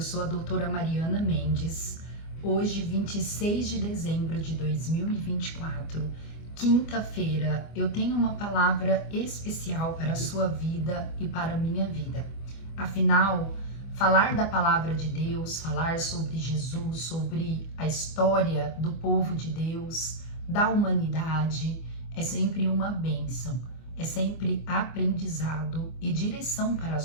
sou a doutora Mariana Mendes. Hoje, 26 de dezembro de 2024, quinta-feira, eu tenho uma palavra especial para a sua vida e para a minha vida. Afinal, falar da palavra de Deus, falar sobre Jesus, sobre a história do povo de Deus, da humanidade, é sempre uma bênção. É sempre aprendizado e direção para as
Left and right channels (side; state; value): right; late; 24 ms